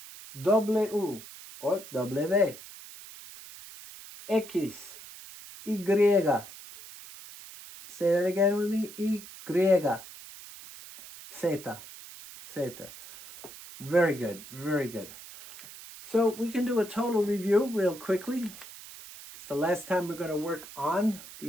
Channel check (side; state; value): right; noise; hiss, 16 dB below the sound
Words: W or W. X, Y. Say that again with me. Y. Zeta. Zeta. Very good. Very good. So we can do a total review real quickly. It's the last time we're going to work on